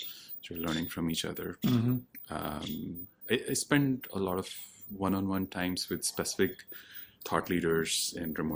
so learning from each other. I spend a lot of one-on-one times with specific thought leaders in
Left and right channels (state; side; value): identical; both; correlation 1.00